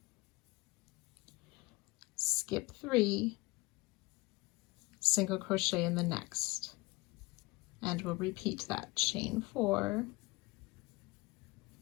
skip 3, single crochet in the next, and we'll repeat that. Chain 4,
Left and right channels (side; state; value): right; quieter; 23.2 dB